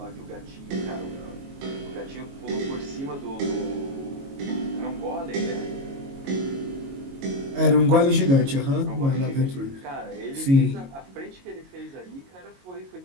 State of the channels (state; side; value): late; left; 22 ms